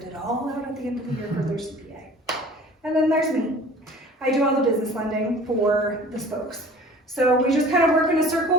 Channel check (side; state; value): both; normal; correlation 0.46